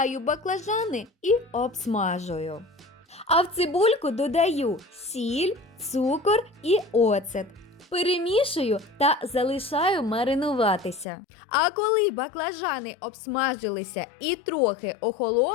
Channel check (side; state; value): right; drops out; at 11.1 s